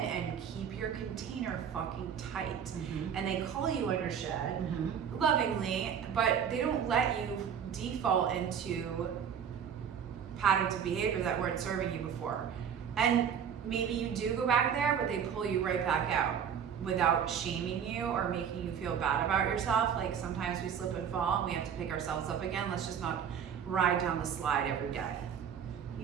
keep your container fucking tight. And they call you on your shit lovingly, but they don't let you default into patterns of behavior that weren't serving you before. And maybe you do go back there, but they pull you right back out without shaming you or making you feel bad about yourself. Like sometimes we slip and fall and we have to pick ourselves up again. Let's just not ride down the slide every day.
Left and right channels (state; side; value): quieter; left; 7.9 dB